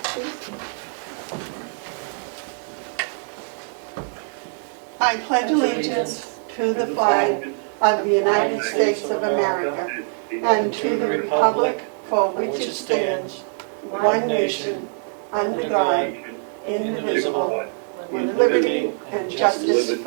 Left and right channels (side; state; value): left; silent; 57 dB below the other